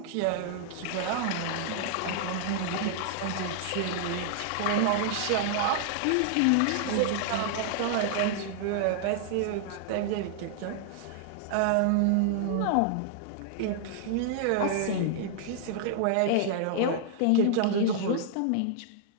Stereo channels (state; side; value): different; both; correlation -0.01